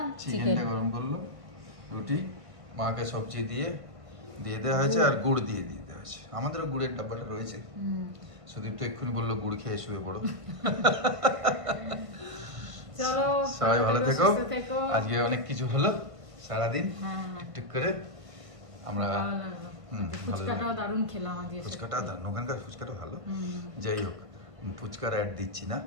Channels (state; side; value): late; left; 1.5 ms